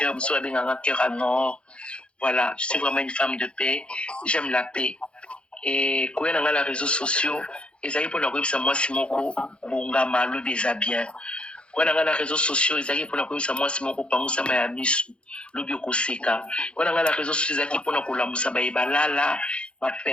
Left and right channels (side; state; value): right; late; 0.057 ms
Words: Un cœur à nord. Voilà, je suis vraiment une femme de paix. J'aime la paix. Et quand on a les réseaux sociaux, ils arrivent pour nous dire moi, c'est mon bon gamin, le déshabillé. Quand on a les réseaux sociaux, ils arrivent pour la commission moi c'est mon copain ça m'a mis le bio koseka. Quand on a les réseaux sociaux, ils arrivent pour la commission ba ibalala, ba